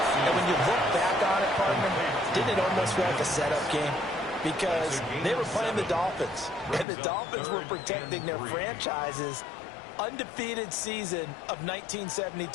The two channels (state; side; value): drops out; right; at 6.9 s